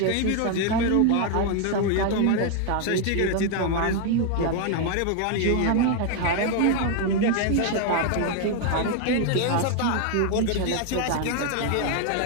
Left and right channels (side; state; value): both; different; correlation 0.00